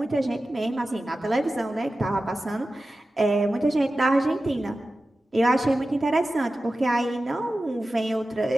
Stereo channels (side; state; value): both; normal; correlation 0.94